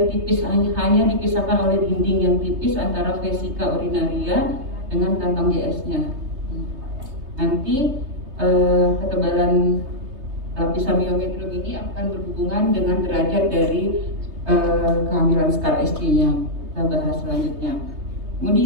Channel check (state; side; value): late; left; 3.2 ms